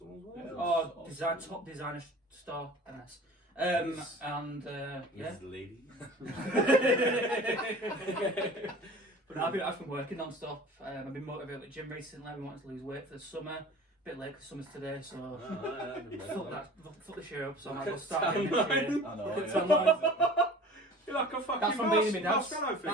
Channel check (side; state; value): both; normal; correlation 0.42